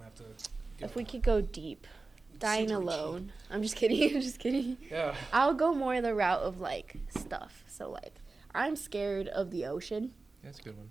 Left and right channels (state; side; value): quieter; left; 3.7 dB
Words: have to. If we could go deep, dying Super alone. I'm just kidding. I'm just kidding. cheap. Yeah. I'll go more the route of like stuff. So like I'm scared of the ocean, That's a good one.